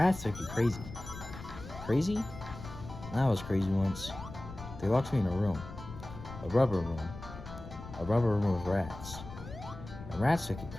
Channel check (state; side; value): noise; left; rumble, 12 dB below the sound